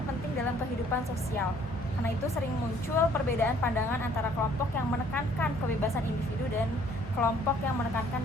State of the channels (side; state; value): both; normal; correlation 0.60